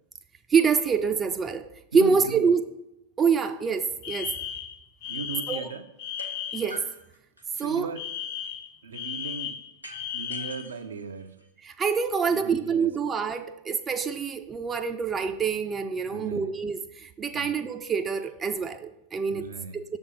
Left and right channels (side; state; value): left; quieter; 4.7 dB